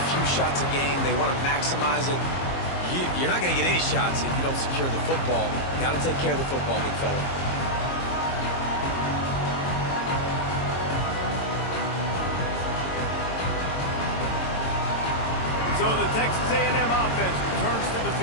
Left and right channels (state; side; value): late; right; 22 ms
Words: few shots a game. They want to maximize it. You're not going to get any shots if you don't secure the football. Got to take care of the football, big fella. So the Texas A&M offense returns to the